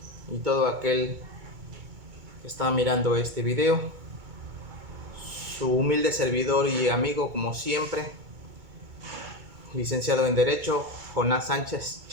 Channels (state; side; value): late; left; 2.2 ms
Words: y todo aquel que está mirando este video. Su humilde servidor y amigo, como siempre, licenciado en Derecho, Jonás Sánchez